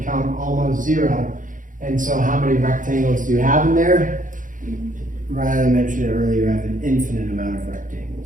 almost 0. And so how many rectangles do you have in there? Rather than mention it earlier, you have an infinite amount of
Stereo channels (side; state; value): left; late; 0.38 ms